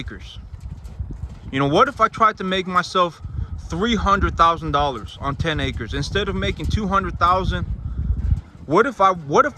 You know, what if I tried to make myself $300,000 on 10 acres instead of making $200,000? What if I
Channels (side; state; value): both; identical; correlation 1.00